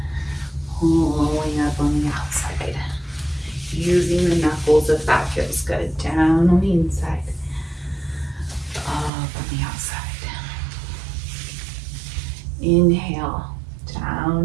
Pulling up on the outside. Using the knuckles if that feels good. Down on the inside. Up on the outside. Inhale,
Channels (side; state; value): left; drops out; at 9.1 s